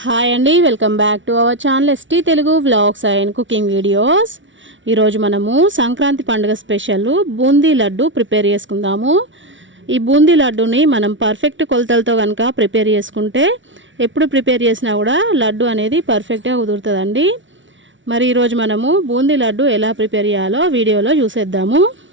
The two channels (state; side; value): late; left; 0.56 ms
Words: Hi అండి, welcome back to our channel ST Telugu vlogs and cooking videos. ఈరోజు మనము సంక్రాంతి పండుగ స్పెషల్ బూందీ లడ్డు ప్రిపేర్ చేసుకుందాము. ఈ బూందీ లడ్డుని మనం పర్ఫెక్ట్ కొలతలతో కనుక ప్రిపేర్ చేసుకుంటే ఎప్పుడు ప్రిపేర్ చేసినా కూడా లడ్డు అనేది పర్ఫెక్ట్గా కుదురుతుందండి. మరి ఈరోజు మనము బూందీ లడ్డు ఎలా ప్రిపేర్ చేయాలో వీడియోలో చూసేద్దాము.